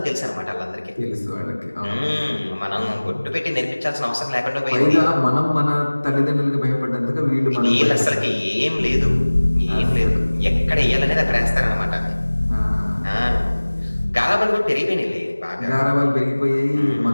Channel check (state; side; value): inverted; both; correlation -1.00